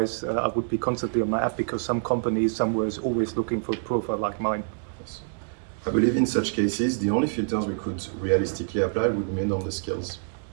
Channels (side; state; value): left; silent; digital silence